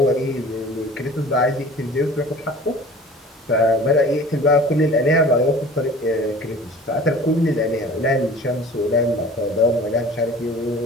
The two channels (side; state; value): both; normal; correlation 0.43